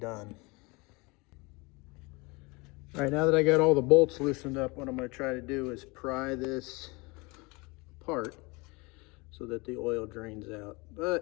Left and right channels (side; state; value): right; quieter; 26.3 dB